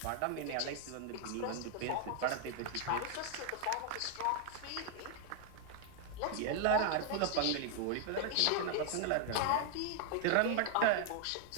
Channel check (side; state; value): both; different; correlation 0.00